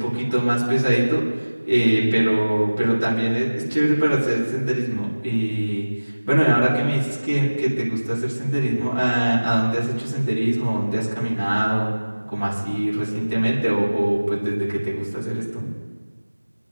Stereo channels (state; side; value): inverted; both; correlation -1.00